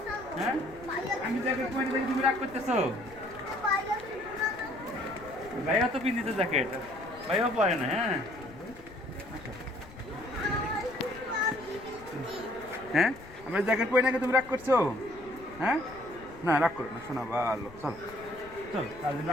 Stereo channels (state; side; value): noise; left; rumble, 20 dB below the sound